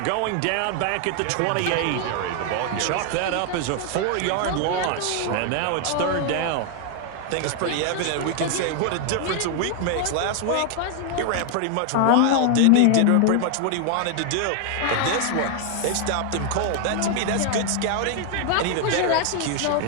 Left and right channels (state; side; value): different; both; correlation 0.00